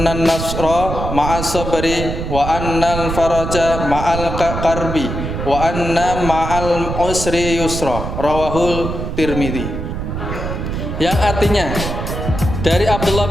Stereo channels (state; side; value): noise; right; rumble, 5 dB below the sound